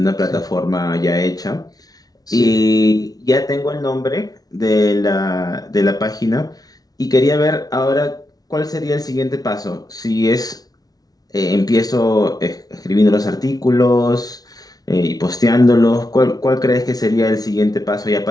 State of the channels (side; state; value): right; late; 0.18 ms